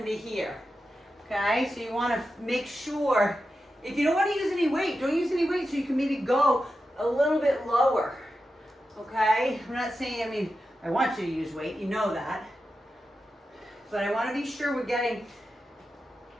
here. Okay, so you want to make sure, if you don't want to use any weight, don't use any weight, so you can maybe go a little bit lower. Okay, I'm not saying, I want you to use weight, you know that. But I want to be sure we're getting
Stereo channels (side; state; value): both; normal; correlation 0.90